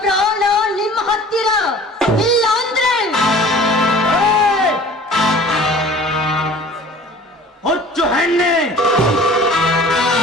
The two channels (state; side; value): normal; both; correlation 0.46